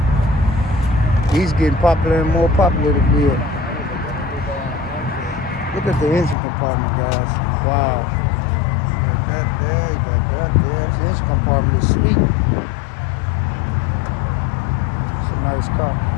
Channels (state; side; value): drops out; right; at 6.4 s